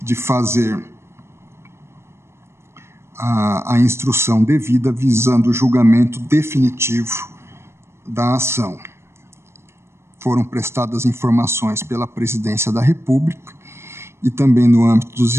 de fazer a instrução devida visando o julgamento definitivo da ação. Foram prestadas informações pela Presidência da República e também no âmbito dos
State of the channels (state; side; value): late; left; 0.13 ms